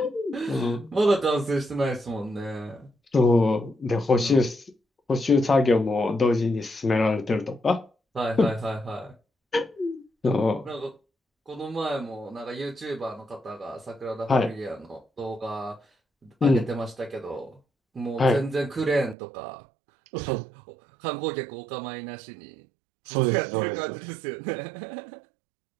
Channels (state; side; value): drops out; left; at 19.2 s